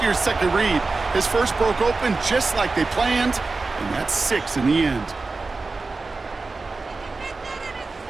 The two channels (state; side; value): quieter; left; 3.8 dB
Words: your second read. His first broke open just like they planned, and that's 6 in the end.